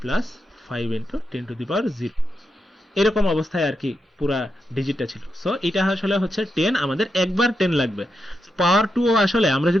plus 5 into 10 to the power 0, এরকম অবস্থায় আর কি পুরা ডিজিটটা ছিল। সো এটা আসলে হচ্ছে 10, আমাদের একবার 10 লাগবে। পাওয়ার 2 আসলে আমরা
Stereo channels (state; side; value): normal; both; correlation 0.85